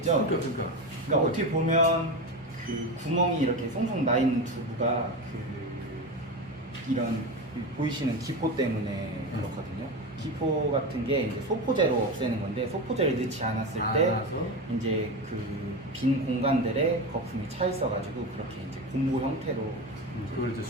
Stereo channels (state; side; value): normal; both; correlation 0.21